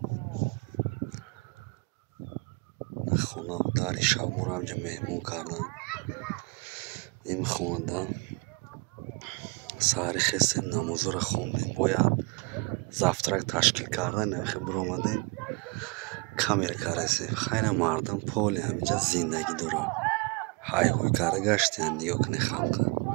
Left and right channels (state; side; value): quieter; left; 28.1 dB